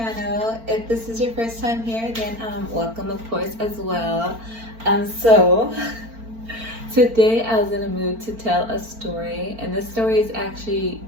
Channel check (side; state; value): left; late; 4.4 ms